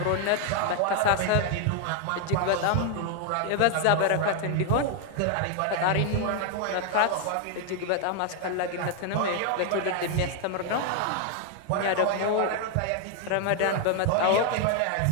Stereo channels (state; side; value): different; both; correlation 0.00